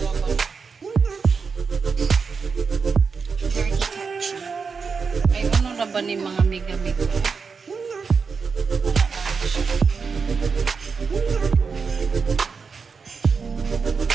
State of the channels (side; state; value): left; quieter; 5.3 dB